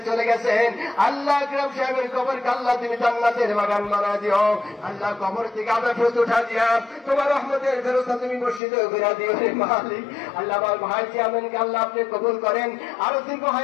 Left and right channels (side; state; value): right; drops out; at 8.6 s